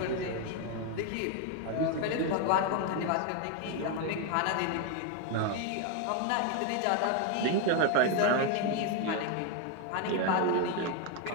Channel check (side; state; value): both; different; correlation 0.01